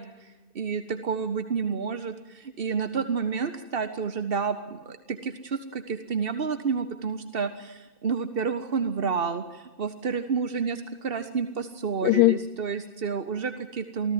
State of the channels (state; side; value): late; left; 2.7 ms